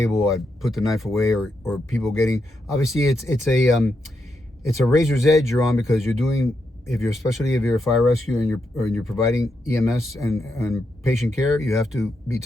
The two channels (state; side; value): normal; both; correlation 0.83